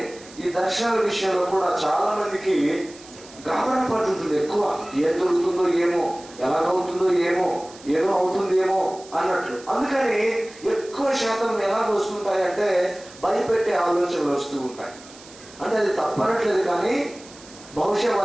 ఈ దర్శనాల విషయంలో కూడా చాలా మందికి గాబరా పడుతుంది ఎక్కువ. ఏం దొరుకుతుందో ఏమో, ఎలాగవుతుందో ఏమో, ఏదో అవుతుందేమో అన్నట్లు. అందుకని ఎక్కువ శాతం ఎలాగ వస్తుంటాయంటే భయపెట్టే ఆలోచనలు వస్తూ ఉంటాయి. అంటే అది తప్పనట్లేదు, కానీ బహుశా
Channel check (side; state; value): right; noise; hiss, 20 dB below the sound